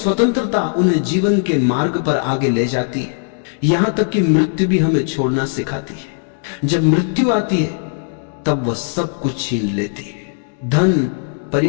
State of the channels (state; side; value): silent; right; 67 dB below the other